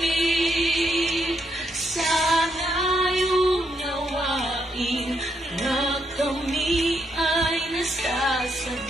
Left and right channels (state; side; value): normal; both; correlation 0.78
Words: Sana yung nawain na kami ay